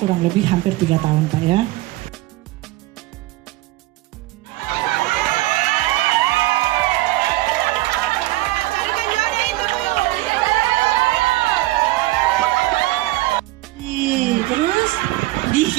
lebih hampir 3 tahun Pak ya. Terus terus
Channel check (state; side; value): quieter; left; 18.5 dB